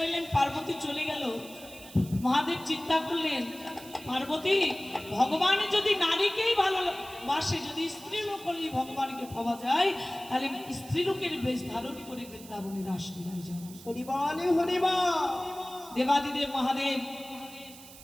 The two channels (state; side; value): noise; right; hiss, 18 dB below the sound